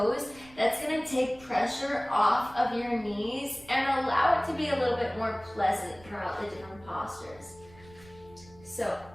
That's going to take pressure off of your knees and allow it to be a little bit more pleasant throughout the different postures. So,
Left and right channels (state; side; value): noise; right; rumble, 23 dB below the sound